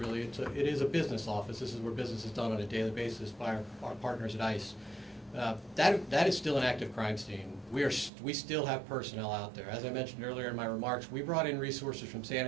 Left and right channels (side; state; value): left; drops out; at 8.1 s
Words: it is a business office. This is where business is done on a daily basis by our partners at ICE. That is still an active crime scene. We still have personnel out there. As I mentioned earlier in my remarks, we brought in resources from San